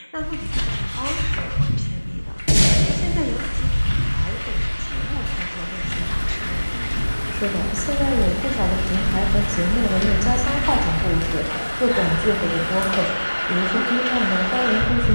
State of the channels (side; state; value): both; inverted; correlation -1.00